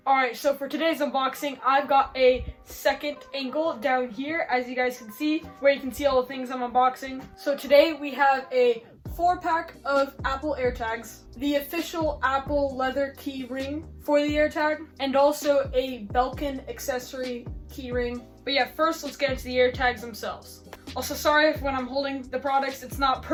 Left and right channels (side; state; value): both; identical; correlation 1.00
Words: Alright, so for today's unboxing, I've got a second angle down here, as you guys can see, where you can see all the things I'm unboxing. So today we have a 4-pack of Apple AirTags, the official Apple leather key ring for the AirTag, and also a Belkin accessory key ring. But yeah, first let's get into the AirTags themselves. Also, sorry if when I'm holding the products, it's not